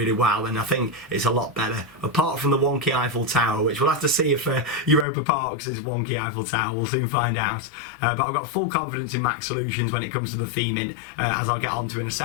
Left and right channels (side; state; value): right; drops out; at 5.1 s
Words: well, and I think it's a lot better. Apart from the wonky Eiffel Tower, which we'll have to see if Europa Parks is wonky Eiffel Tower. We'll soon find out. But I've got full confidence in Mack Solutions when it comes to the theming, as I'll get onto in a